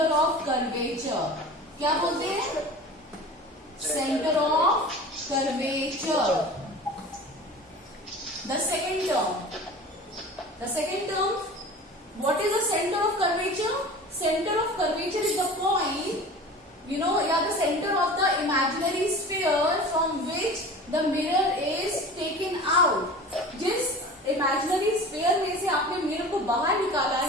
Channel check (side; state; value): both; normal; correlation 0.38